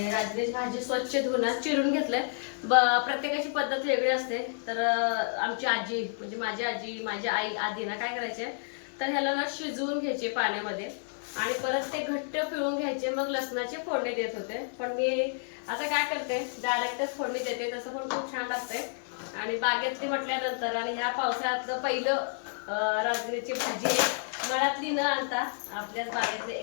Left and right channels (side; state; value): right; silent; digital silence